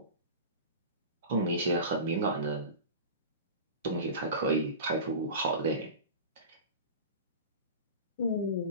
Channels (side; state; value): both; inverted; correlation -0.31